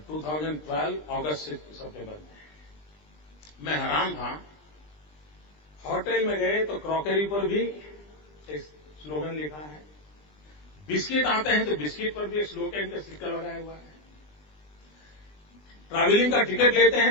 2012 अगस्त सितंबर में मैं हैरान था। होटल में गए तो क्रॉकरी पर भी एक स्लोगन लिखा है, बिस्किट आते हैं तो बिस्किट पर भी एक स्लोगन का स्टिकर लगाया हुआ है, ट्रैवलिंग का टिकट लेते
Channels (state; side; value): late; right; 20 ms